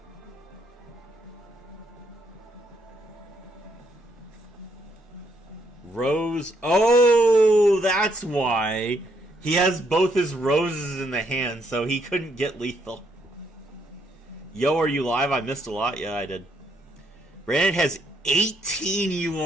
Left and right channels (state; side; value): normal; both; correlation 0.73